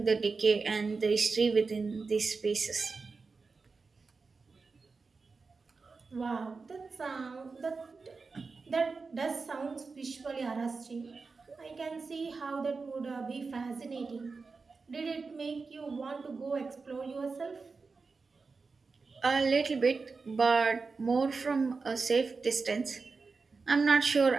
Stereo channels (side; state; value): left; quieter; 4.4 dB